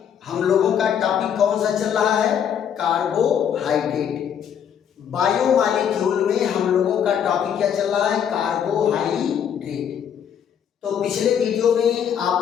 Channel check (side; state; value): right; quieter; 8.5 dB